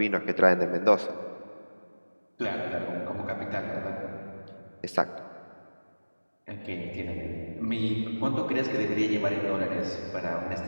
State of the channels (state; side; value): inverted; both; correlation -1.00